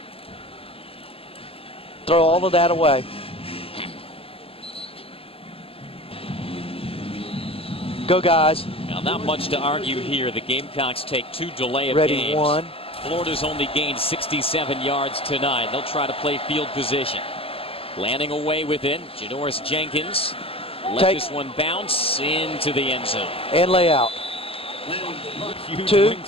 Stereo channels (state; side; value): late; right; 0.27 ms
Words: Throw all of that away. Go, guys. Now, not much to argue here. The Gamecocks take 2 delay of Ready games. 1. Florida's only gained 67 yards tonight. They'll try to play field position. Landing away with it, Janoris Jenkins. Let Take. this one bounce into the end zone. And lay out. Huge 2.